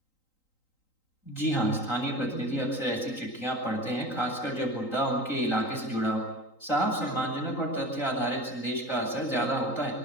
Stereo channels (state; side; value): late; right; 3.9 ms